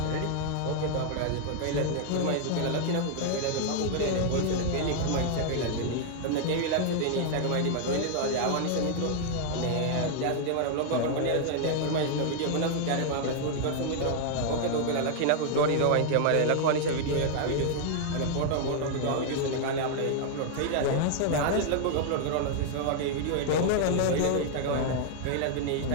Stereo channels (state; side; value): different; both; correlation 0.00